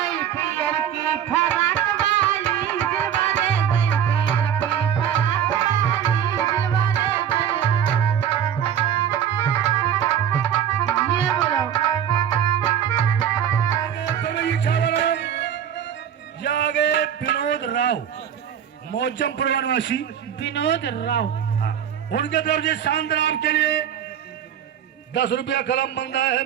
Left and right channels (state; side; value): quieter; left; 9.2 dB